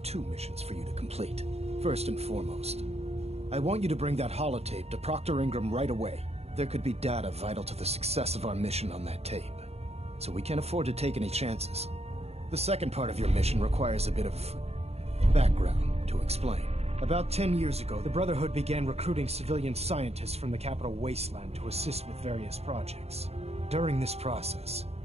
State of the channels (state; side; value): late; left; 0.30 ms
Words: 2 missions for you to complete. First and foremost, I want you to bring that holotape to Proctor Ingram right away. There could be data vital to the success of our mission on that tape, so we can't afford to take any chances. The second part of your mission requires a bit of background to explain. About 10 years ago, the Brotherhood began recruiting civilian scientists from the capital wasteland to assist with various projects. During this process,